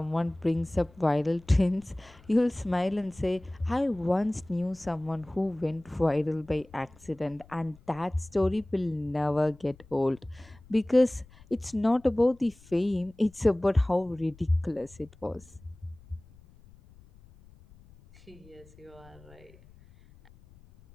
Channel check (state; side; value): noise; left; rumble, 25 dB below the sound